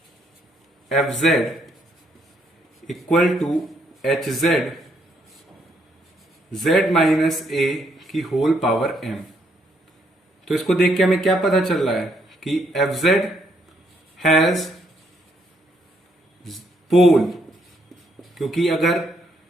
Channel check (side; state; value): both; normal; correlation 0.72